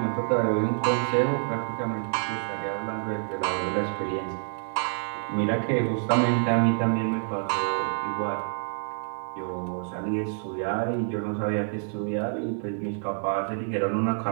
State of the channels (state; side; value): silent; left; 60 dB below the other